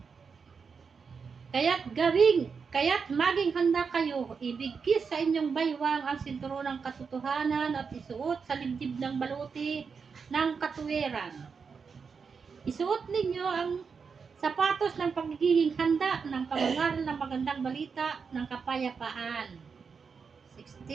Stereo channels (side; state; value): left; quieter; 5.6 dB